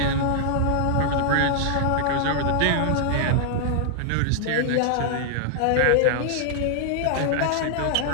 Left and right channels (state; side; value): different; both; correlation -0.01